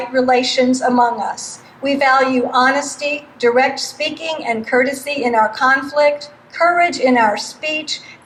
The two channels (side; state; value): both; identical; correlation 1.00